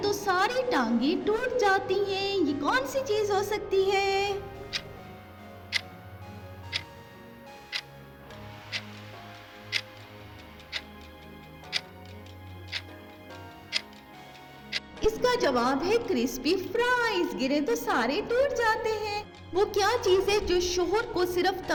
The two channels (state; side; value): identical; both; correlation 1.00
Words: सारी टांगे टूट जाती हैं। ये कौन सी चीज हो सकती है। इसका जवाब है क्रिस्पी फ्राइज। गिरे तो सारे टूट जाते हैं। वो क्या चीज है जो शोहर को सिर्फ